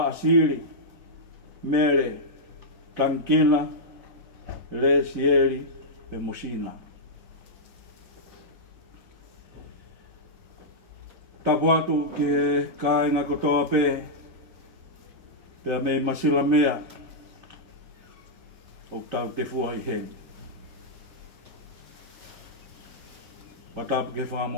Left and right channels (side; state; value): both; normal; correlation -0.09